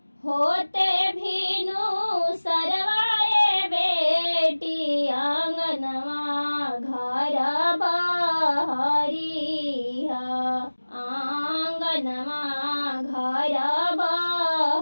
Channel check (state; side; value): inverted; both; correlation -1.00